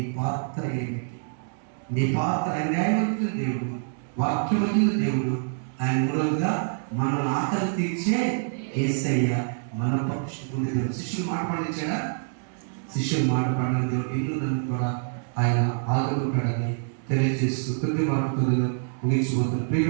పాత్ర ఏమిటి? నీ పాత్ర న్యాయవంతుల దేవుడు, వాక్యవంతుల దేవుడు. ఆయన మూలంగా మనం ఆకలి తీర్చే యేసయ్య మన పక్షుకున్న దేవుడు. శిష్యులు మాట పండించాడా? శిష్యులు మాట పడిన దేవుడు ఇల్లు నన్ను కూడా ఆయన ఆదుకుంటాడని తెలియజేస్తూ కొద్ది మాటతో ముగించిపోతున్న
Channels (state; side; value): silent; left; digital silence